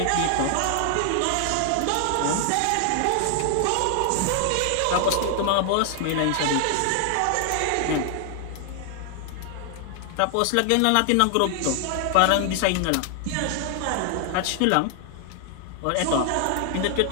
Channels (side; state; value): both; different; correlation 0.00